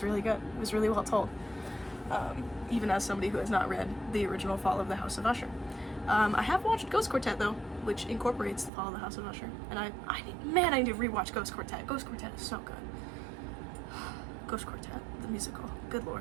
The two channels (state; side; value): drops out; left; at 8.7 s